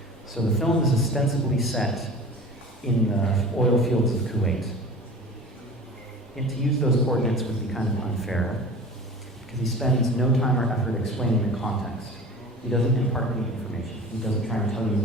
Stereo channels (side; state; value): both; normal; correlation 0.39